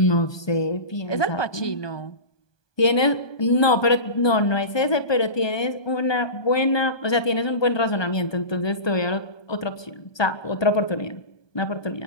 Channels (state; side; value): late; right; 1.2 ms